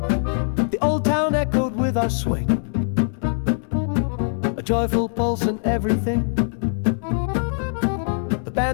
The old town echoed with our swing, a joyful pulse in everything. The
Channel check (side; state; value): right; silent; 64 dB below the other